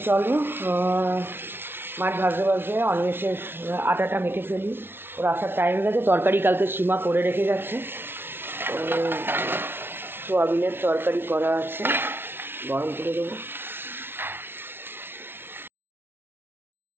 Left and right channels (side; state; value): left; late; 0.11 ms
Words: চলো মাছ ভাজতে ভাজতে অনিমেষের আটাটা মেখে ফেলি, ওর আসার টাইম গেছে। তরকারি কালকে সীমা করে রেখে গেছে, সোয়াবিনের তরকারি করা আছে, গরম করে দেবো।